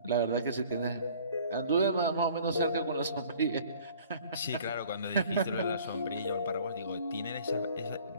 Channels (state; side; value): inverted; both; correlation -0.52